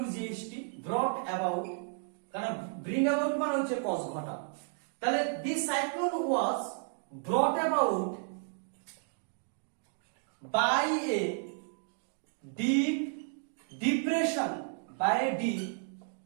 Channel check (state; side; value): silent; left; 55 dB below the other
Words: ব্রট অ্যাবাউট, কারণ ব্রিং অ্যাবাউট মানে হচ্ছে কজ ঘটা। তাহলে this cyclone was ব্রট about by a deep depression